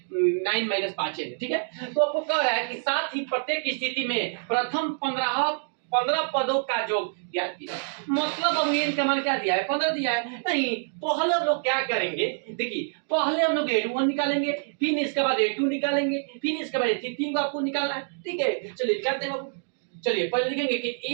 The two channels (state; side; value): silent; left; digital silence